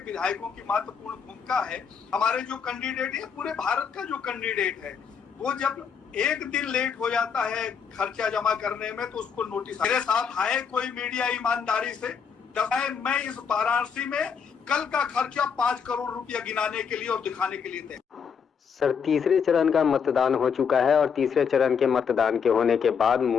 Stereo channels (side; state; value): right; quieter; 6.6 dB